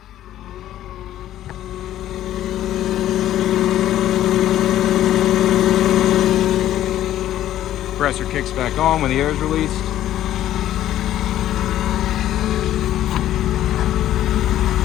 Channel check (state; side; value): quieter; right; 12.6 dB